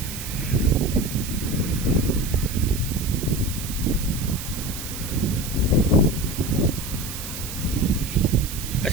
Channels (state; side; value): noise; right; hiss, 9 dB below the sound